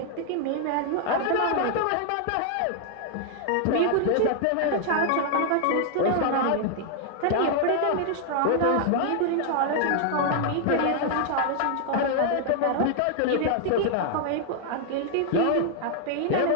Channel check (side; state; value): both; different; correlation 0.00